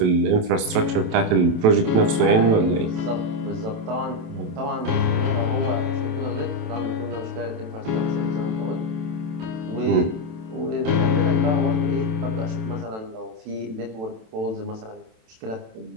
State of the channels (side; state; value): left; late; 27 ms